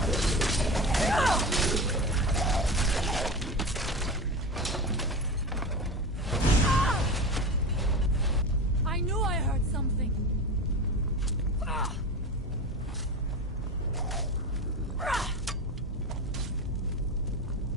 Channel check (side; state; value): both; normal; correlation 0.27